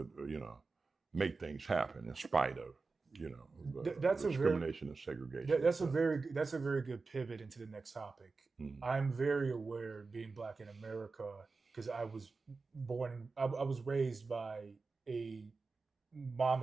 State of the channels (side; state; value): left; quieter; 4.1 dB